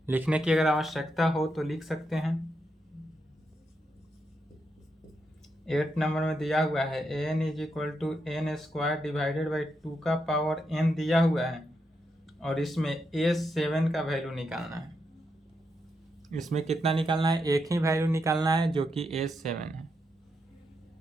लिखने की अगर आवश्यकता हो तो लिख सकते हैं। 8 नंबर में दिया हुआ है an is equal to n square divided by 2 का पावर n दिया हुआ है, और इसमें a7 का वैल्यू निकालना है। इसमें कितना निकालना है? एक ही वैल्यू निकालना है जो कि a7 है।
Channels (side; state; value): both; normal; correlation 0.82